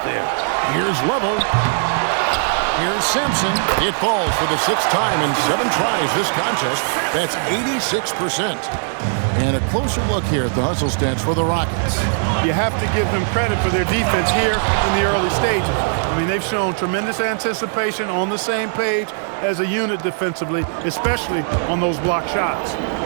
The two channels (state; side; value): silent; left; digital silence